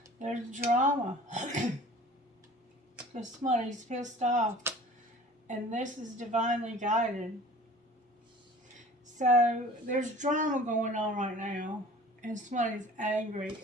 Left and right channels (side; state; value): both; normal; correlation 0.45